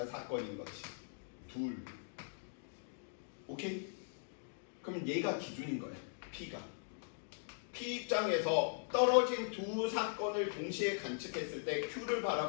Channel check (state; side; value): silent; right; digital silence